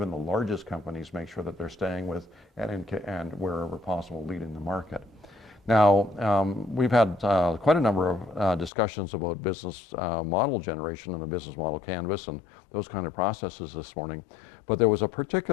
the largest companies make sure that they're staying with and wherever possible leading the market. Now, we've had quite a number of discussions about business model generation and the business model canvas and those kind of processes this morning. But there was a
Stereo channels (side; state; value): right; drops out; at 8.7 s